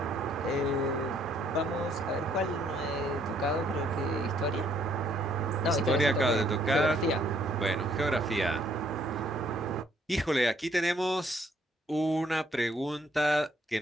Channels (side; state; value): both; normal; correlation 0.66